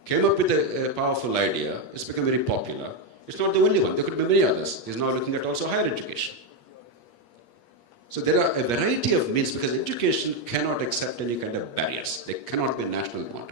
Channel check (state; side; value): late; right; 8.4 ms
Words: came up with a powerful idea. It's become very popular. It's not the only one. There could be many others. He's now looking at also higher education. So there are a variety of means because education cannot accept any kind of barriers. There cannot be national